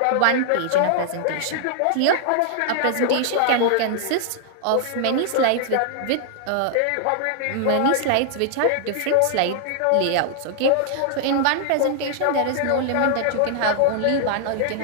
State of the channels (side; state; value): both; different; correlation -0.01